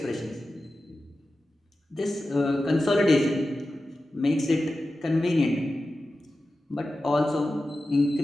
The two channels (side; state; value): both; normal; correlation 0.93